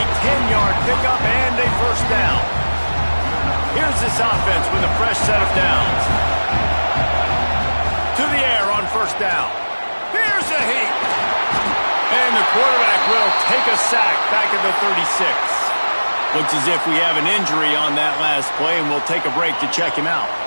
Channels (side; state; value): both; inverted; correlation -1.00